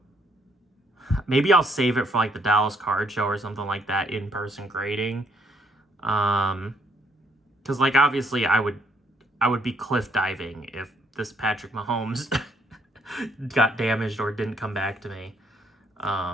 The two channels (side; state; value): both; normal; correlation 0.69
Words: Maybe I'll save it for like the Dallas card show or something like that, in-person grading. Because like obviously I would be cliff diving if this Patrick Mahomes got damaged or didn't come back to me.